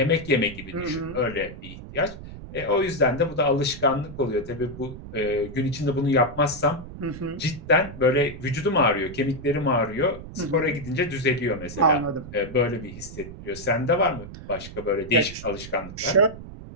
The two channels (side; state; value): right; noise; rumble, 13 dB below the sound